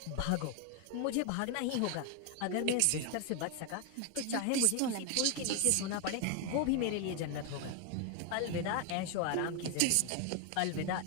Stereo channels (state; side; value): different; both; correlation 0.00